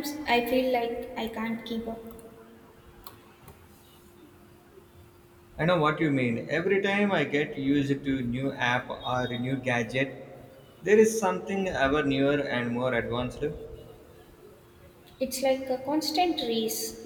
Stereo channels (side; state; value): both; identical; correlation 1.00